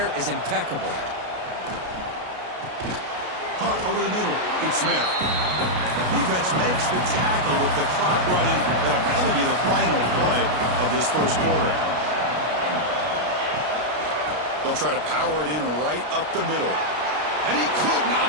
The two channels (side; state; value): left; late; 33 ms